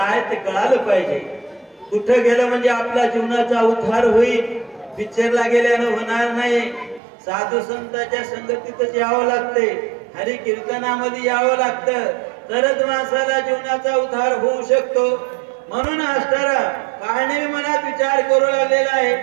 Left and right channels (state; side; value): drops out; left; at 7.0 s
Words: ते कळालं पाहिजे. कुठं गेलं म्हणजे आपल्या जीवनाचा उद्धार होईल. पिक्चरला गेल्यानं होणार नाही. साधू संतांच्या संगतीतच यावं लागते, हरी कीर्तनामध्ये यावं लागतं, तरच माणसाला जीवनाचा उद्धार होऊ शकतो. म्हणून असणारा काळने मनात विचार करू लागलेला आहे,